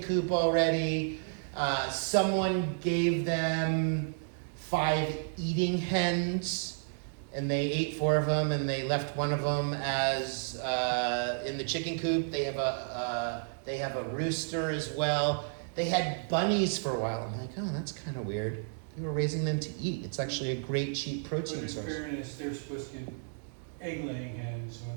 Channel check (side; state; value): left; silent; digital silence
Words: coop already. Someone gave them 5 eating hens, and they ate 4 of them, and they left one of them as in the chicken coop. They have a rooster as well. They had bunnies for a while. I'm like, oh, that's kind of weird. They were raising them to eat. It's actually a great cheap protein source. But in fairness, they're supposed to get egg-laying hens. When